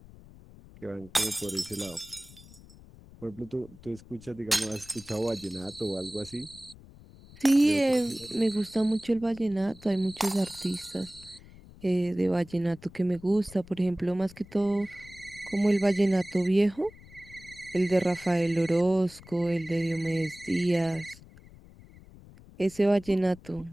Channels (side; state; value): left; noise; rumble, 21 dB below the sound